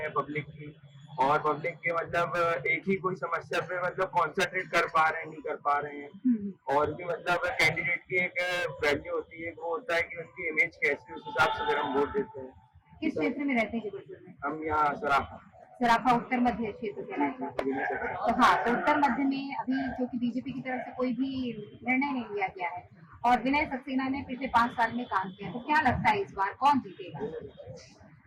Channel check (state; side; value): identical; both; correlation 1.00